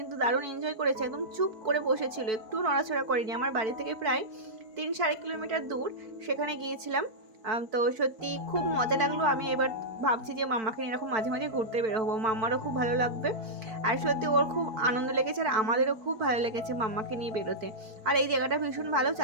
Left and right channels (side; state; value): left; late; 4.5 ms